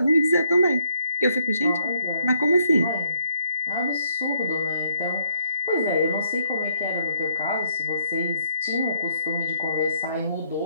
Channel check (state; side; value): inverted; both; correlation -0.72